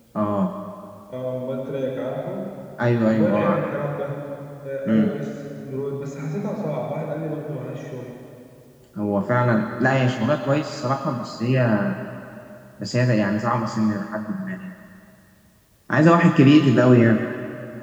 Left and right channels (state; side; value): identical; both; correlation 1.00